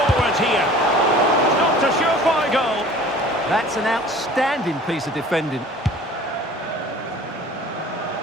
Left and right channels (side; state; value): both; normal; correlation 0.46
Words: here. Not a surefire goal. That's an outstanding piece of defending.